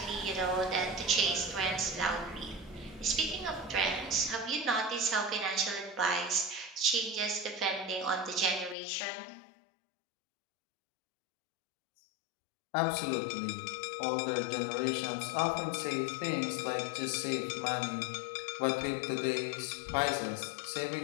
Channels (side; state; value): right; drops out; at 8.8 s